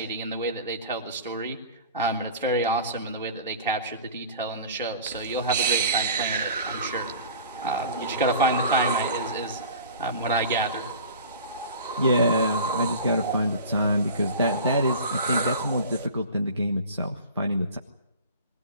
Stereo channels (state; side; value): inverted; both; correlation -0.39